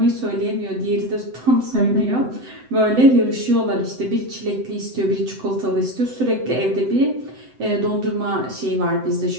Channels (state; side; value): late; left; 7.9 ms